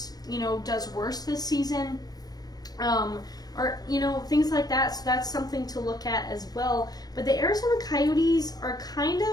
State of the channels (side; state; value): right; late; 0.19 ms